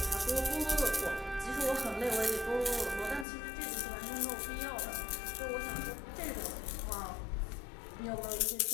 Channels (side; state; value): right; drops out; at 3.2 s